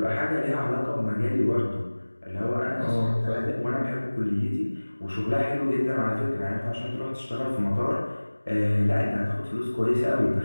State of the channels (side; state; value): both; inverted; correlation -1.00